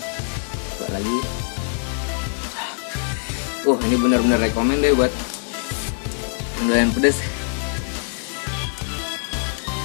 Coba lagi. Ini benar-benar recommend deh buat yang pedas.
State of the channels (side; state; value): right; silent; 59 dB below the other